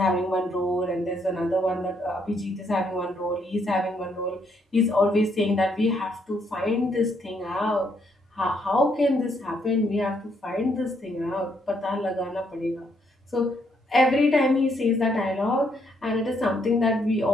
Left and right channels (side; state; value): both; normal; correlation 0.73